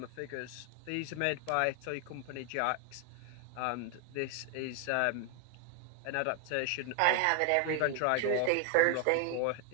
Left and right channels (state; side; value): different; both; correlation 0.01